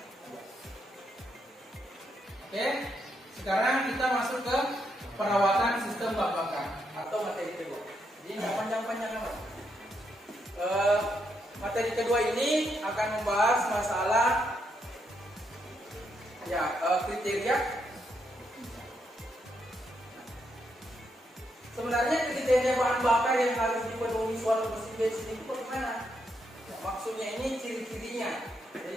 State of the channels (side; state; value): both; normal; correlation 0.79